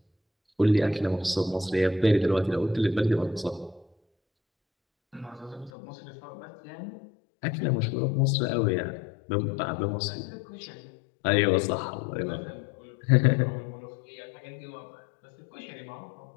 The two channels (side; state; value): right; drops out; at 5.7 s